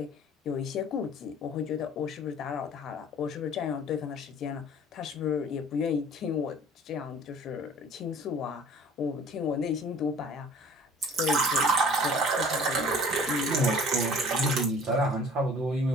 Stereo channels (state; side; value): normal; both; correlation 0.49